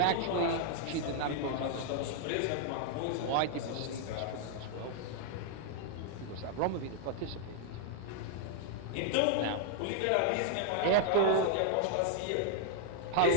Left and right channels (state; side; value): different; both; correlation 0.00